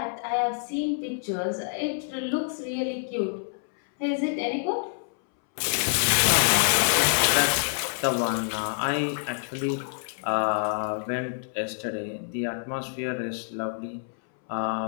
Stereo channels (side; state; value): right; silent; 60 dB below the other